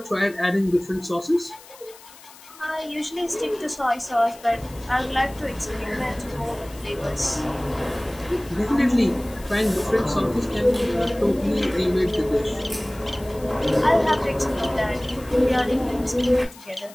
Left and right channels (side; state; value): left; noise; hiss, 21 dB below the sound